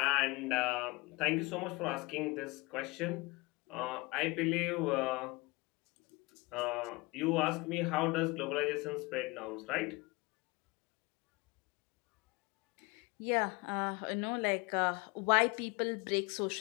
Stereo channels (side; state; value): right; quieter; 24.6 dB